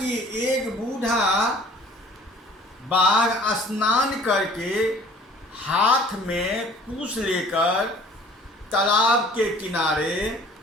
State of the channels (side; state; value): both; normal; correlation 0.51